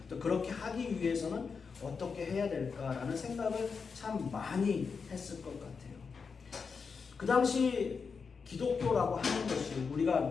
또 그렇게 하기 위해서는 어떻게 해야 될까라는 생각을 참 많이 했을 것 같아요. 그 당시 기독교라고 하는 것이, 우리가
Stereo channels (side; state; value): right; quieter; 5.4 dB